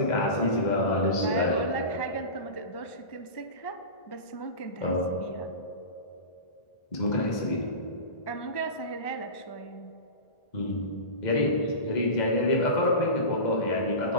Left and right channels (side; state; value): right; late; 1.2 ms